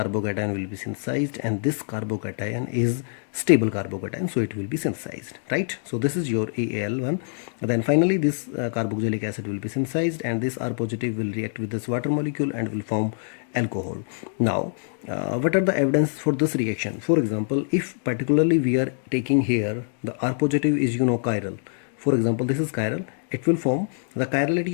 will be synthesized, and this carbocation is stable carbocation, so it will be synthesized, right? So this is your AAL1. Then finally this carboxylic acid will be synthesized, and this R positive will react with this water molecule and will form alcohol. Now what are the evidence for this reaction? For example, if particularly we are taking here the R positive is chiral. For example, this is chiral, it will form, the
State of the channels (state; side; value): silent; right; digital silence